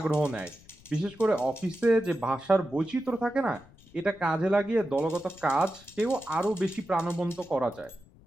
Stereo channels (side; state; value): left; noise; rumble, 25 dB below the sound